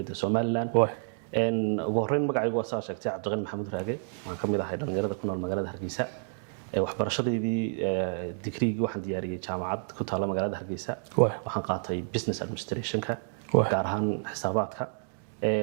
Soomaaliland ugu horeyn magacaygu waa saa sheegtay Cabdiqani Maxamuud Raage waxaan kamid ahay dhalinyarada ku nool magaalada Hargeysa waxbarashadeedii digriigii waxaan diyaariyay jaamacad ku taala magaalada Hargeysa waxaan qaatay business administration-ka gaar ahaan xisaabaadka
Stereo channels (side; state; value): left; silent; digital silence